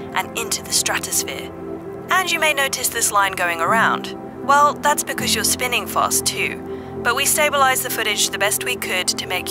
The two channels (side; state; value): both; identical; correlation 1.00